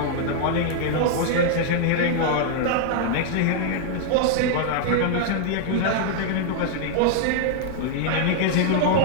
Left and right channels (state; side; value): different; both; correlation -0.01